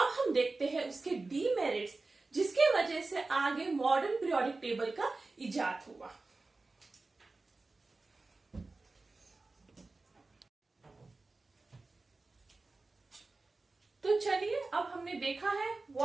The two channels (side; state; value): left; quieter; 3.5 dB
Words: हम देखते हैं उसके डीमेरिट्स जिसके वजह से आगे मॉडर्न पीरियोडिक टेबल का इजाद हुआ। तो चलिए अब हमने देखा है